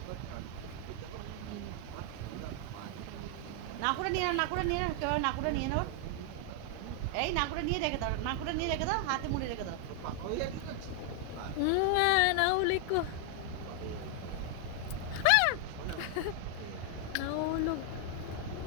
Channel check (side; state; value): both; different; correlation 0.00